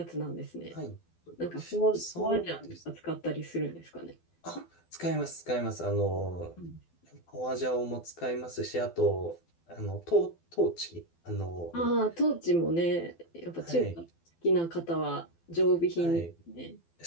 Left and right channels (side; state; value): right; late; 12 ms